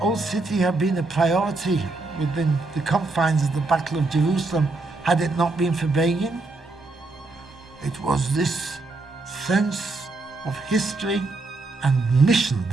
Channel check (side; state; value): left; quieter; 3.3 dB